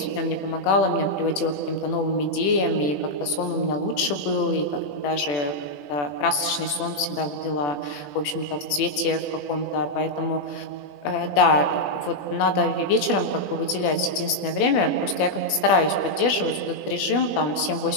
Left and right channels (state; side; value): late; right; 21 ms